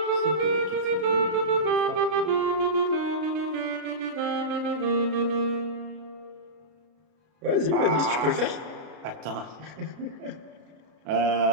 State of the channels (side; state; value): left; late; 33 ms